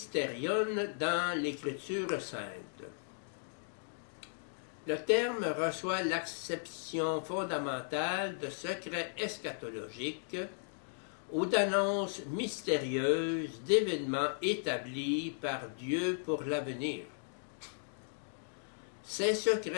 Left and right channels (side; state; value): right; silent; digital silence